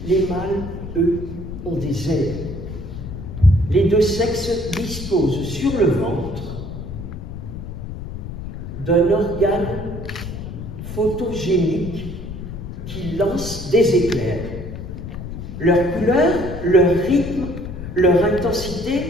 Les mâles, eux, ont des ailes. Les deux sexes disposent sur le ventre d'un organe photogénique qui lance des éclairs. Leur couleur, leur rythme, leur intensité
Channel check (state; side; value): noise; left; rumble, 9 dB below the sound